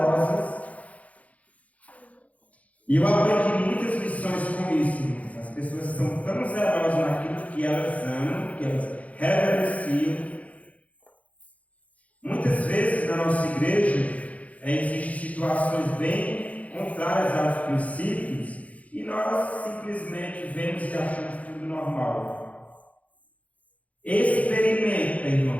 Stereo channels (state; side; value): late; right; 0.068 ms